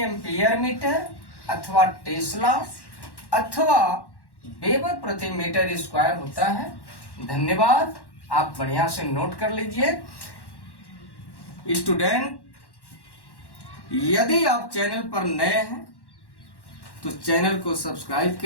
एम्पियर मीटर अथवा टेस्ला अथवा वेबर प्रति मीटर स्क्वायर होता है। धन्यवाद, आप बढ़िया से नोट कर लीजिए। स्टूडेंट, यदि आप चैनल पर नए हैं तो चैनल को सब्सक्राइब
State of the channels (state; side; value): late; right; 1.1 ms